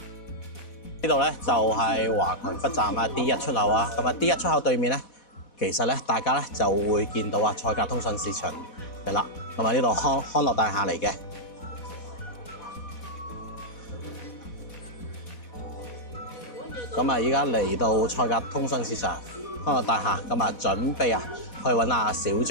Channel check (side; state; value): right; late; 4.1 ms